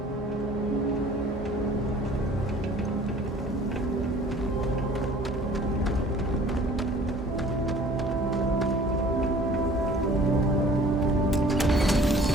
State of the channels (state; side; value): normal; both; correlation 0.50